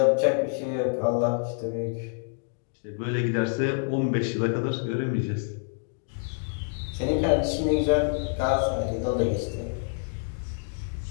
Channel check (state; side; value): silent; right; digital silence